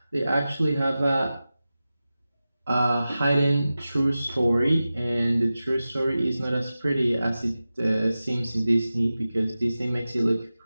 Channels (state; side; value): inverted; both; correlation -0.94